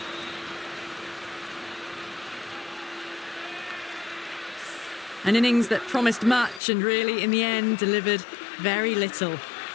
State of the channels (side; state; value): right; drops out; at 6.6 s